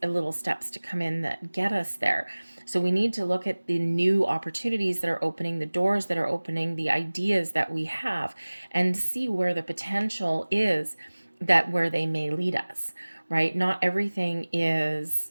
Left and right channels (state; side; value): inverted; both; correlation -1.00